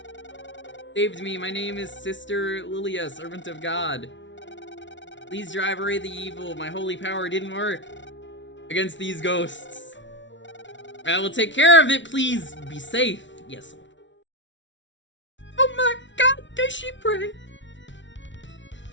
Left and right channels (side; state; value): right; late; 0.55 ms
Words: Saved me. My name is Sister Lilia, servant of God. Please drive away the evil. My holy power didn't work against these ghosts. I will take care of it. Please be safe. Yes. Oh my God, does she pray?